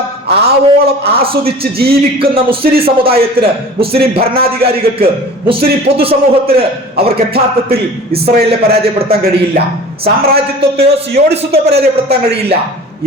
ആവോളം ആസ്വദിച്ച് ജീവിക്കുന്ന മുസ്ലിം സമുദായത്തിന്, മുസ്ലിം ഭരണാധികാരികൾക്ക്, മുസ്ലിം പൊതുസമൂഹത്തിന് അവർക്ക് യഥാർത്ഥത്തിൽ ഇസ്രായേലിനെ പരാജയപ്പെടുത്താൻ കഴിയില്ല. സാമ്രാജ്യത്വത്തെയോ സിയോണിസത്വത്തെ പരാജയപ്പെടുത്താൻ കഴിയില്ല.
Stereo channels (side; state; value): both; normal; correlation 0.41